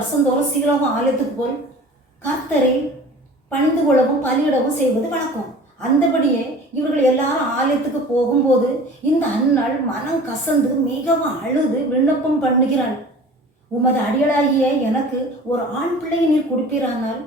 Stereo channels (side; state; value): both; normal; correlation 0.43